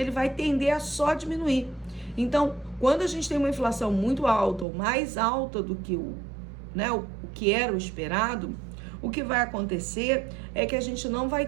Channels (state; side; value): drops out; left; at 4.7 s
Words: vai tender a só diminuir. Então, quando a gente tem uma inflação muito alta, ou mais alta do que o que era o esperado, o que vai acontecer é que a gente não vai